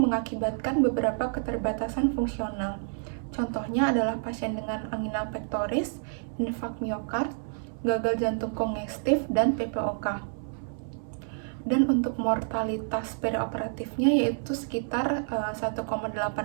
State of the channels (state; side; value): silent; left; 59 dB below the other